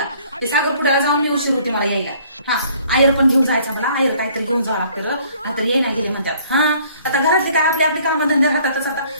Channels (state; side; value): inverted; both; correlation -0.59